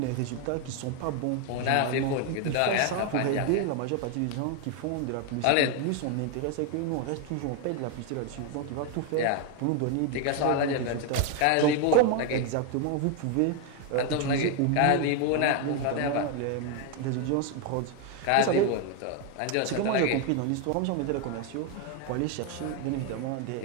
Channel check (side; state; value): both; different; correlation 0.01